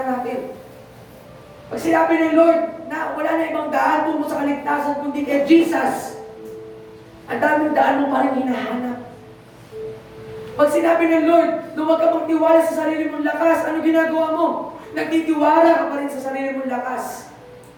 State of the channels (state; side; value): identical; both; correlation 1.00